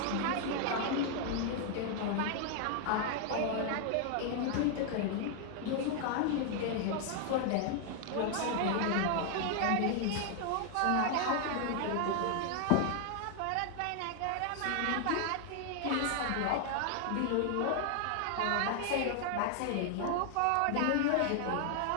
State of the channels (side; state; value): both; different; correlation 0.00